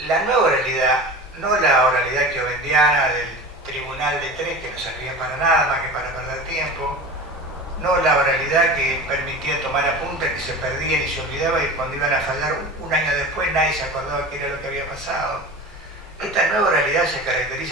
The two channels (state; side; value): normal; both; correlation 0.33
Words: nueva oralidad, no la oralidad kiovendiana del tribunal de 3 que no servía para nada más que para perder tiempo, no la oralidad que permitía tomar apuntes que se perdían y se olvidaba y cuando iban a fallar un año después nadie se acordaba qué era lo que había pasado. Esta nueva oralidad se